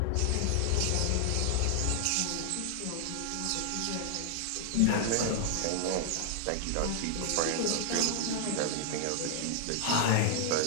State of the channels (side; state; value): both; different; correlation 0.00